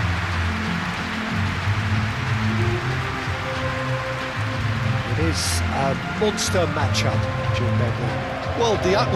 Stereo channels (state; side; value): identical; both; correlation 1.00